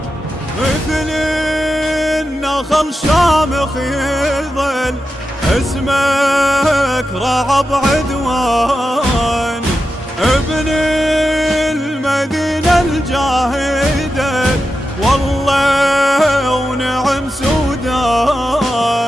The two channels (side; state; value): both; normal; correlation 0.90